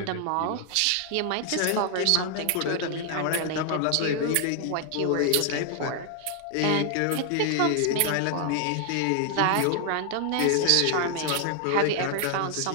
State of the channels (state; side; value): different; both; correlation 0.00